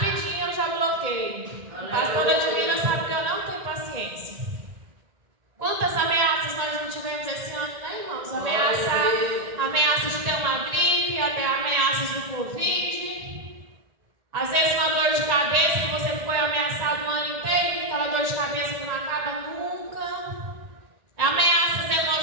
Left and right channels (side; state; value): left; late; 1.9 ms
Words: eu já bloqueio. A pastora Divina sabe que eu não tenho paciência. Quantas ameaças nós não tivemos esse ano, né, irmãos? Ameaças de ter uma gripe, até ameaças do Covid. Às vezes uma dor de cabeça que você foi ameaçado o ano inteiro, aquela dor de cabeça que não acaba nunca. Ameaças